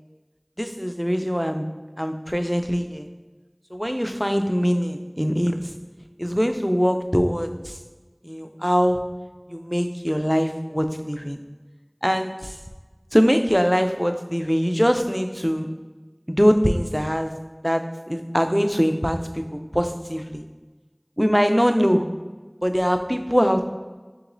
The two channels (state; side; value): identical; both; correlation 1.00